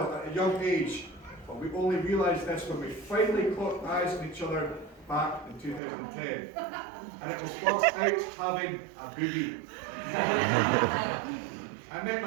at a young age. But we only realised this when we finally caught eyes on each other back in 2010. And it was whilst out having a boogie. I met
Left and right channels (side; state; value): left; drops out; at 5.8 s